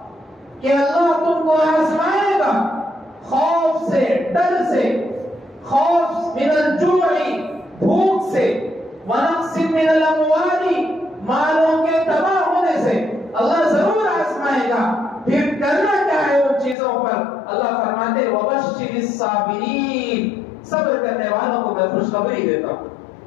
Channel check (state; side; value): drops out; right; at 16.8 s